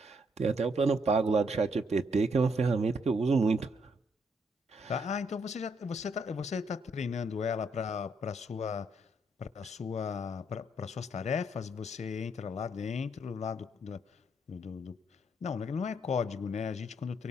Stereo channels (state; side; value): normal; both; correlation 0.73